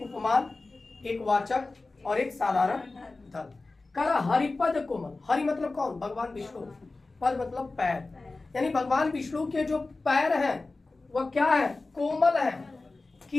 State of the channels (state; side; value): quieter; right; 3.4 dB